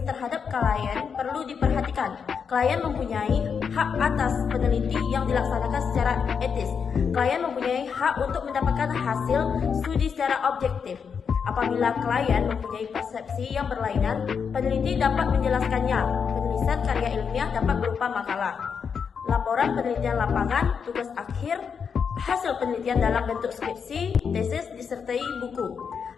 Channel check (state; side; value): quieter; right; 6.4 dB